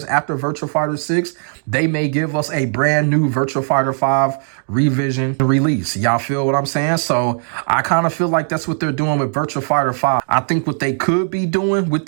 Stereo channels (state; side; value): silent; left; 67 dB below the other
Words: after Virtua Fighter 6, they may give us a brand new Virtua Fighter 5 revision and release. Y'all feel what I'm saying? So I kind of feel like that's what they're doing with Virtua Fighter 5. I think what they could be doing with